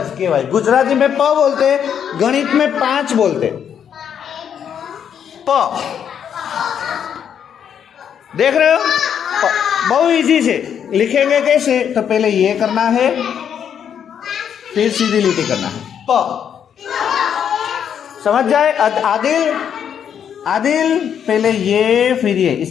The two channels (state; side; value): quieter; right; 8.4 dB